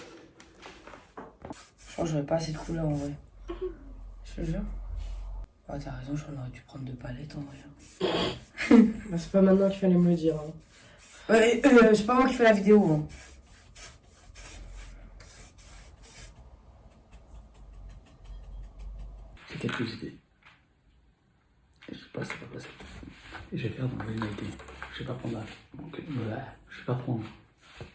Je pense que j'aurais pas assez de couleurs en vrai. Je te jure. Ah, t'as raison, j'en aurais dû prendre 2 palettes en vrai. Bah, c'est pas maintenant qu'il fallait me le dire. Hein. C'est pas moi qui fais la vidéo. Hein. J'ai quelques idées. Et je sais pas si c'est pas possible. Et je vais faire dans l'originalité. Je vais pas prendre là. Donc, voilà. Je vais pas prendre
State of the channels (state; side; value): identical; both; correlation 1.00